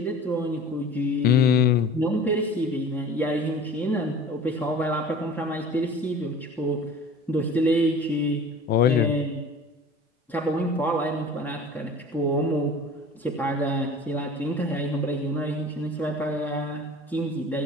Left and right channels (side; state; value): both; normal; correlation 0.42